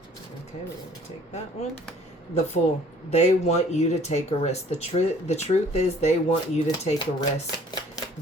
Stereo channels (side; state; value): both; normal; correlation 0.55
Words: Okay, we're going to take that one. The Fool. They want you to take a risk. The truth is they want you to take a risk.